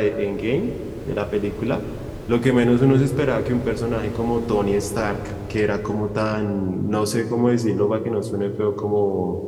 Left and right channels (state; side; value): identical; both; correlation 1.00